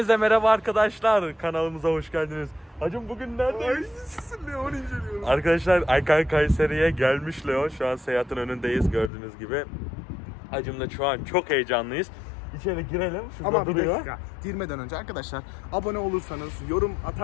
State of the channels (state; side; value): drops out; right; at 9.1 s